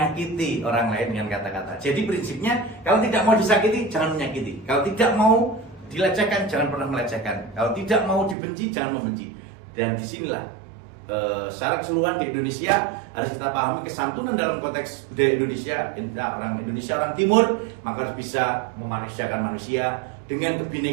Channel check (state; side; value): drops out; left; at 8.3 s